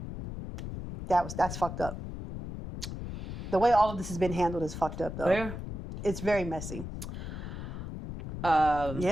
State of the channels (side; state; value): left; noise; rumble, 8 dB below the sound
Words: that's fucked up. The way all of this has been handled is fucked up, though. Yeah. It's very messy.